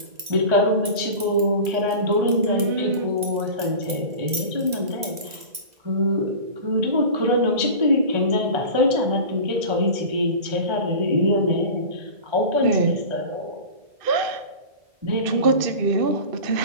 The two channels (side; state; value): left; late; 2.0 ms